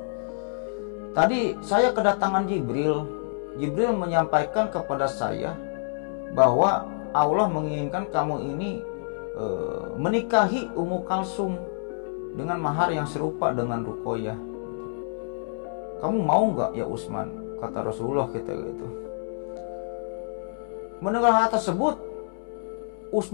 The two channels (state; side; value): silent; right; digital silence